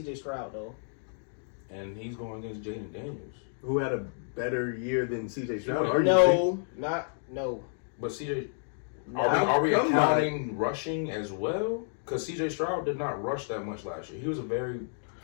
Stroud though, and he's going against Jaden Daniels, who had a better year than CJ Stroud. No. But CJ, are we accounting rushing as well? Because CJ Stroud did not rush that much last year. He was a very,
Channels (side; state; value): right; silent; digital silence